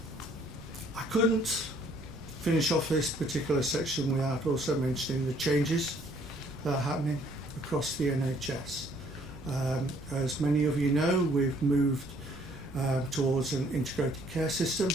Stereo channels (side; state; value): right; noise; rumble, 20 dB below the sound